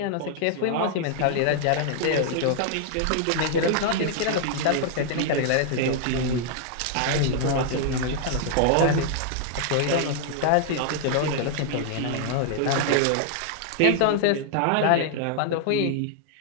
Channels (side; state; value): both; different; correlation 0.00